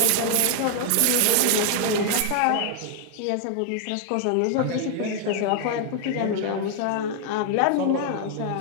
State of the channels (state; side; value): different; both; correlation 0.00